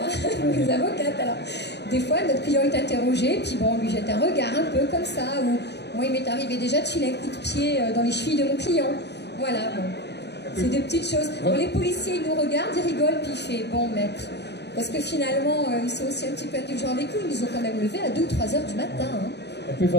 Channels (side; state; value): right; late; 0.50 ms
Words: les avocates. Alors, des fois, notre client est interrogé, puis bon, on lui jette un regard un peu comme ça, ou moi, il m'est arrivé déjà de filer un coup de pied dans les chevilles de mon client. Voilà, bon. C'est des petites choses. Bon, les policiers, ils nous regardent, ils rigolent, puis ils font, bon, maître. Parce que finalement, ils sont aussi un petit peu indulgents avec nous. Ils nous ont quand même levé à 2 ou 3 heures du matin. Hein. Et puis,